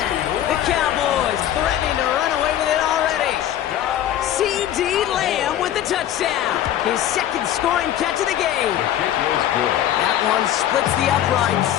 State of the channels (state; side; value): quieter; right; 11.5 dB